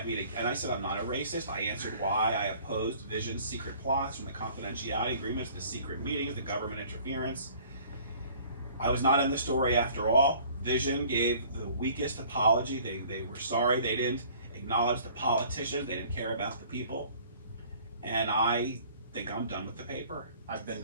me to, and I said I'm not a racist. I answered why I opposed Vision's secret plots, from the confidentiality agreements, the secret meetings, the government interference. I was not in the story after all. Vision gave the weakest apology. They were sorry. They didn't acknowledge the politicians. They didn't care about the people. And I think I'm done with the paper. I've been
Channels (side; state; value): both; inverted; correlation -0.53